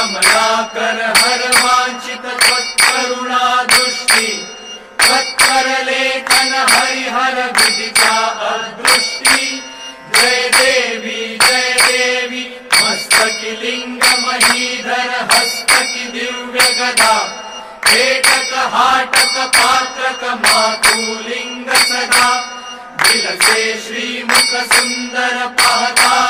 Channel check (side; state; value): both; identical; correlation 1.00